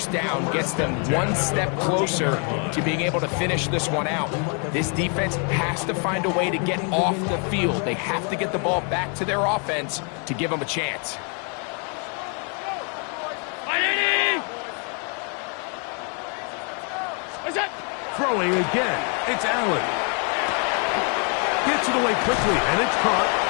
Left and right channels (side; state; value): right; quieter; 38.6 dB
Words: down gets them one step closer to being able to finish this one out. This defense has to find a way to get off the field. They have to get the ball back to their offense to give them a chance. Throwing again, it's Allen. Gets it away quickly, and it's caught.